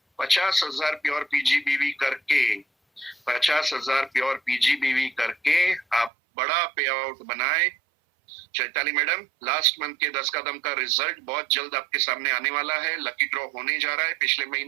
50,000 प्योर पीजीबीवी करके, 50,000 प्योर पीजीबीवी करके आप बड़ा पे आउट बनाए। चैताली मैडम, लास्ट मंथ के 10 कदम का रिजल्ट बहुत जल्द आपके सामने आने वाला है। लकी ड्रॉ होने जा रहा है पिछले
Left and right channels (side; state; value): left; drops out; at 6.1 s